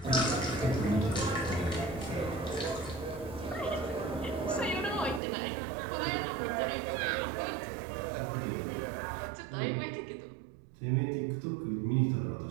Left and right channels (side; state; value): left; drops out; at 5.2 s